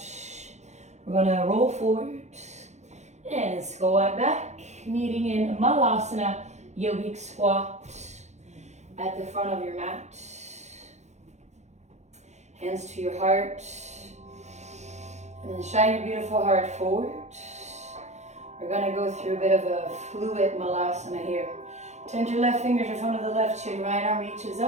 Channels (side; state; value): left; late; 0.33 ms